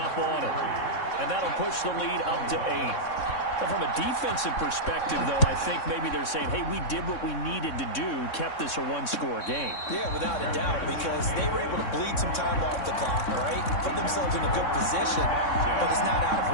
on it. And that'll push the lead up to 8. But from a defensive perspective, though, I think maybe they're saying, hey, we did what we needed to do, kept this a 1-score game. Yeah, without a doubt, because they were able to bleed some time off the clock, right? Put themselves in a good position, but it's not out of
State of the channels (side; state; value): right; late; 3.6 ms